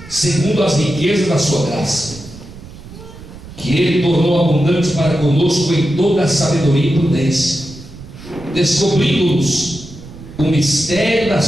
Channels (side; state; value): right; noise; rumble, 17 dB below the sound